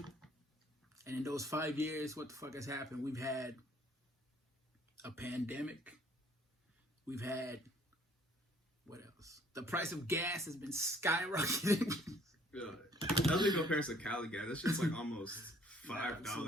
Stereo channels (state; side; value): normal; both; correlation 0.60